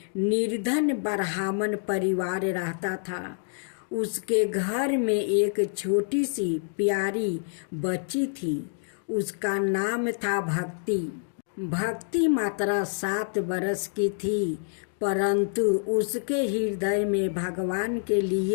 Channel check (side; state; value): right; silent; digital silence